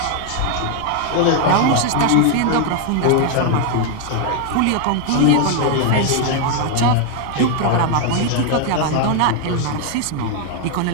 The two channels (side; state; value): both; different; correlation 0.01